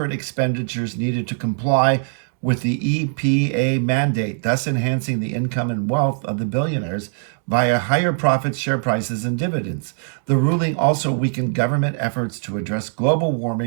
expenditures needed to comply with the EPA mandate, thus enhancing the income and wealth of the billionaires via higher profits, share prices, and dividends. The ruling also weakened government efforts to address global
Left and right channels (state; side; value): silent; left; digital silence